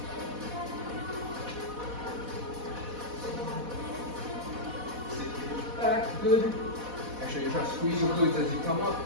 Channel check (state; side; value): late; left; 4.1 ms